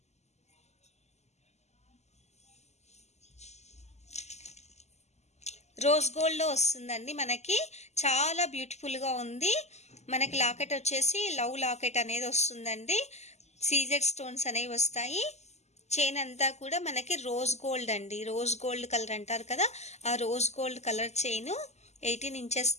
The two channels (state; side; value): late; right; 0.33 ms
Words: రోజ్ గోల్డ్లో వస్తుందండి మనకి. చాలా బ్యూటిఫుల్గా ఉంది. మనకి లాకెట్ వచ్చేసి లవ్ లాకెట్ అనేది వస్తుందండి. సీజెడ్ స్టోన్స్ అనేవి వస్తాయి. చైన్ అంతా కూడా మనకి రోజ్ గోల్డ్ అండి. రోజ్ గోల్డ్ కలర్ అంటారు కదా, ఆ rose gold colour chain 18 inches